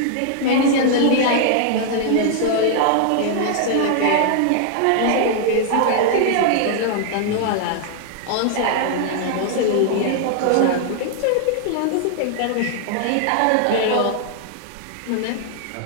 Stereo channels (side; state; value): both; different; correlation 0.00